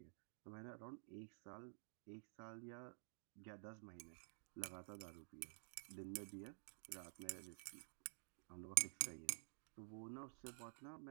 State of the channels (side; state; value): left; silent; digital silence